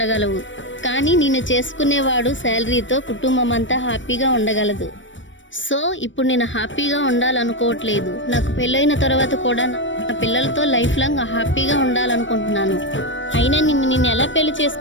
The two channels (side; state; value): right; late; 0.55 ms